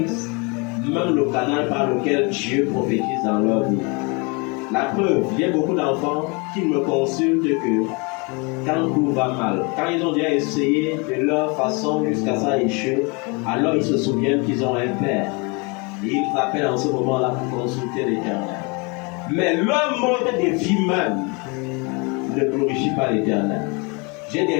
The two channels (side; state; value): right; quieter; 30.6 dB